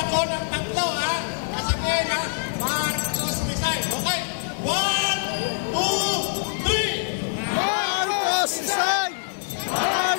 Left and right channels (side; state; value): right; silent; digital silence